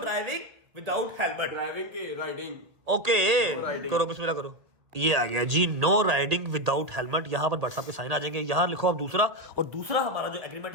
without helmet. Driving की राइडिंग। ओके, करो बिस्मिल्लाह करो। ये आ गया जी, नो राइडिंग विदाउट हेलमेट। यहाँ पर भट्ट साहब के साइन आ जाएंगे। यहाँ लिखो अब दूसरा, और दूसरा हमारा जो एग्रीमेंट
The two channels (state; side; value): late; left; 1.8 ms